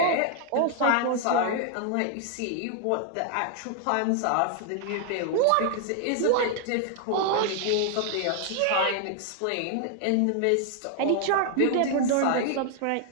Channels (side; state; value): both; different; correlation 0.00